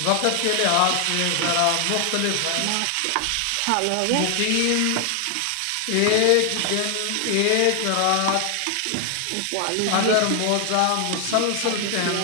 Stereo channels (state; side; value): different; both; correlation 0.00